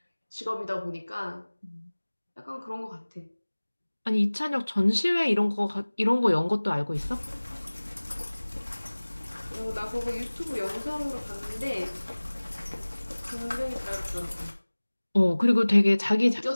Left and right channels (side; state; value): both; inverted; correlation -1.00